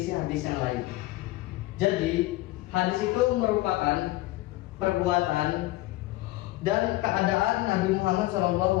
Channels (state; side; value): quieter; right; 18.2 dB